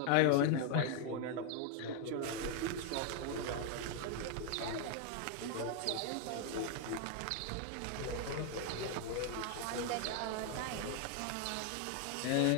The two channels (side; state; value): both; different; correlation 0.01